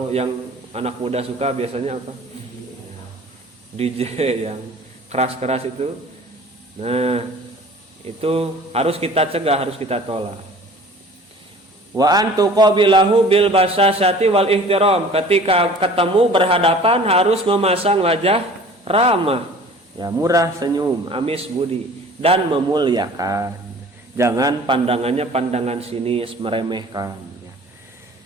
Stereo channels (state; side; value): normal; both; correlation 0.46